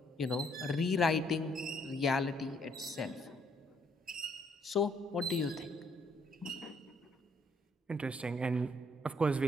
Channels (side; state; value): both; normal; correlation 0.69